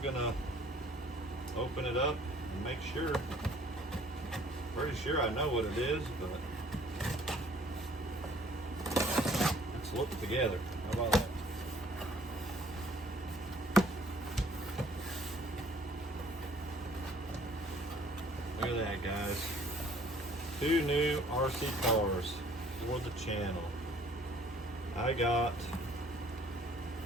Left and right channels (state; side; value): normal; both; correlation 0.57